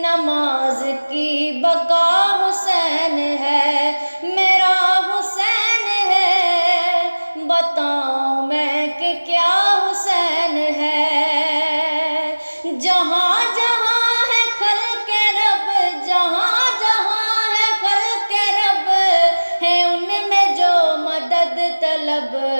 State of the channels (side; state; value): both; inverted; correlation -1.00